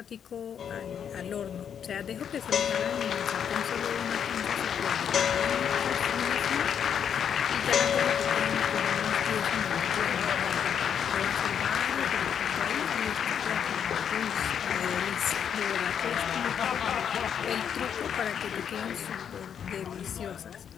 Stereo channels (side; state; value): right; quieter; 8.1 dB